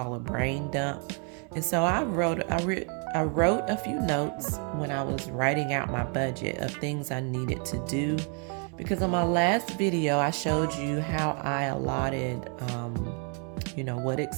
a brain dump. And so I wrote a few notes when I was writing out my budget of things I needed to do, because on my last video I showed you how I allotted what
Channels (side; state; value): left; quieter; 39.6 dB